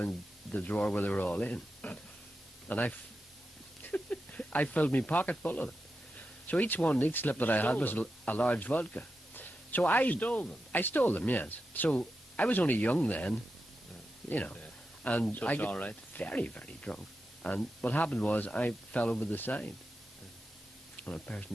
the drawer where they were all in. And I filled my pocket full of it. So each slip that I had was a large vodka. So I stole them? I stole them, yes. So I was only young then. you know. And So I it's got all right. very, very drunk. And what happened was I fell over the side. And a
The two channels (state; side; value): normal; both; correlation 0.89